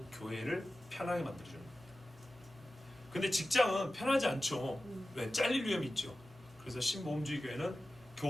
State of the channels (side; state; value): right; noise; hum, 26 dB below the sound